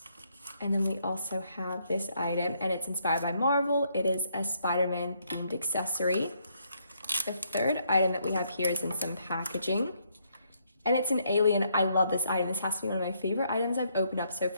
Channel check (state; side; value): inverted; both; correlation -0.73